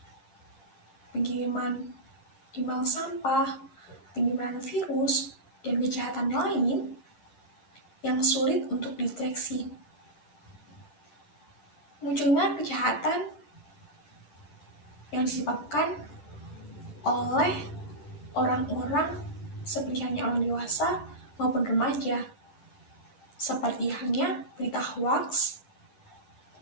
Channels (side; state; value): right; late; 10 ms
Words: pengiriman email sampah, penyebaran virus, dan kejahatan lain yang sulit untuk dideteksi. Munculnya kejahatan yang disebabkan oleh orang-orang seperti hanya orang dewasa maupun remaja, seperti halnya berita hoax